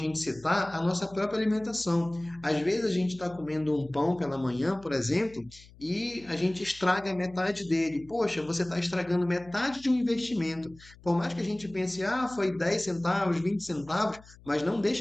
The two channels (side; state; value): left; noise; hum, 23 dB below the sound